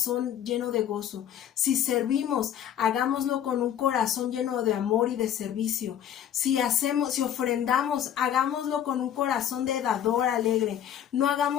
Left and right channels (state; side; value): quieter; right; 10.1 dB